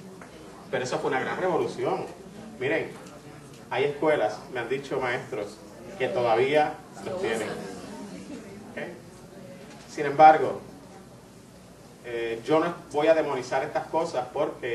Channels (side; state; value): both; identical; correlation 1.00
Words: Pero eso fue una gran revolución. Miren, hay escuelas, me han dicho maestros, que todavía los tienen. ¿Okay? Sin embargo, yo no voy a demonizar estas cosas